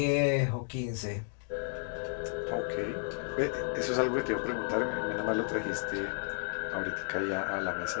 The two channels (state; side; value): silent; right; 55 dB below the other